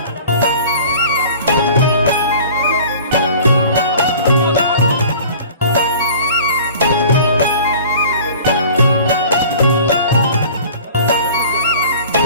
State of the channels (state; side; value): inverted; both; correlation -0.44